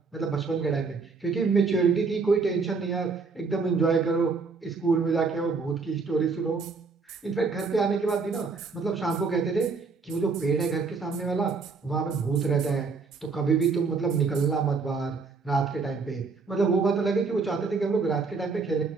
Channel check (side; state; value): left; quieter; 4.6 dB